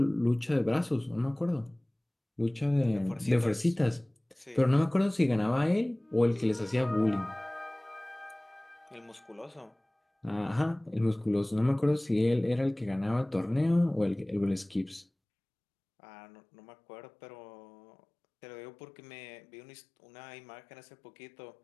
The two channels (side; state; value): right; drops out; at 15.1 s